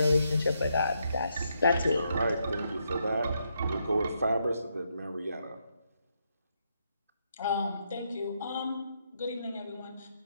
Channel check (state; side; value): inverted; both; correlation -0.78